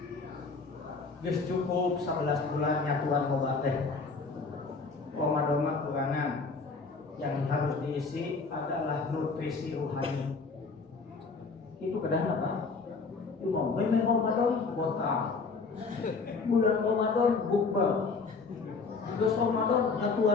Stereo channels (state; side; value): quieter; right; 4.4 dB